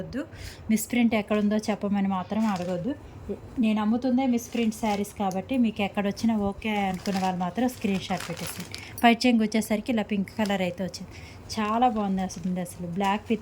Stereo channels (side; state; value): both; identical; correlation 1.00